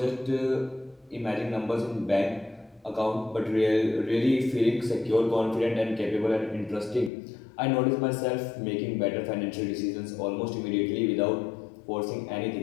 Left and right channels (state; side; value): drops out; right; at 7.1 s